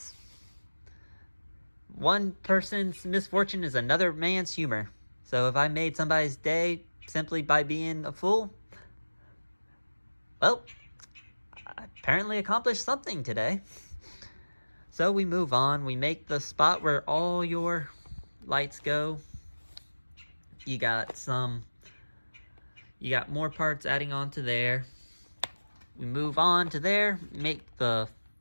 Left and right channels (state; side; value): inverted; both; correlation -1.00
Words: One person's misfortune is another man's humor. So if I made somebody's day simply by being a fool, well, I apparently accomplished something today. So we move on. We make the spot where all your lights go. You got more parts adding on to there. We move on to there, make the